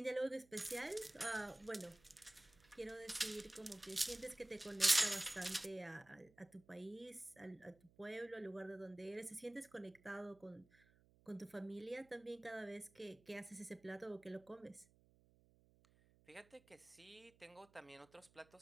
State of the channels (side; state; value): right; noise; hum, 28 dB below the sound